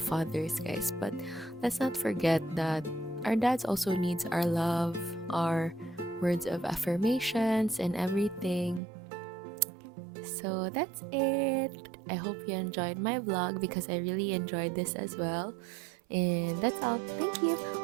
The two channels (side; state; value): left; drops out; at 8.8 s